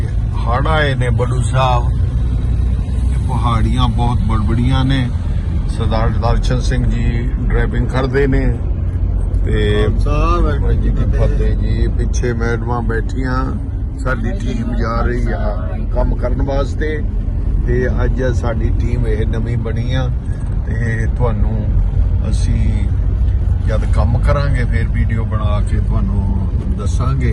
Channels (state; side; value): identical; both; correlation 1.00